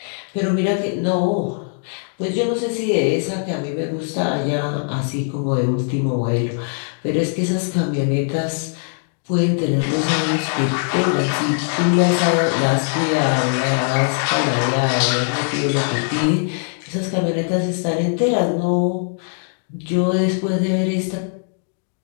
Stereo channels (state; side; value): silent; right; 62 dB below the other